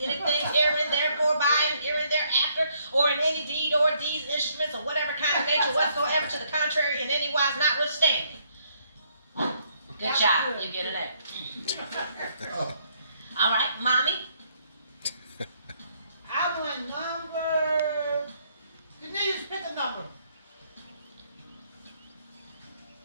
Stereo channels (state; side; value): inverted; both; correlation -0.70